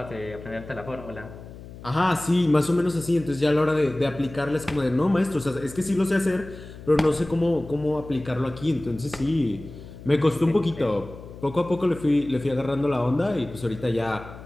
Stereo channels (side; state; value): left; noise; hum, 15 dB below the sound